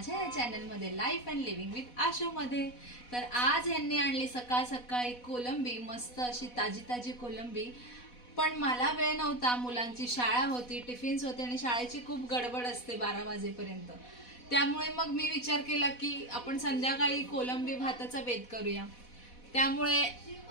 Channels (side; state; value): right; late; 4.1 ms